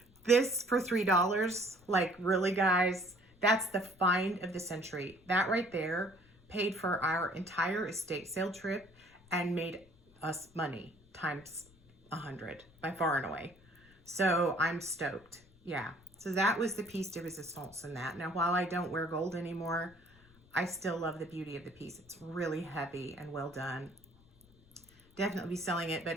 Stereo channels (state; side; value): noise; left; rumble, 27 dB below the sound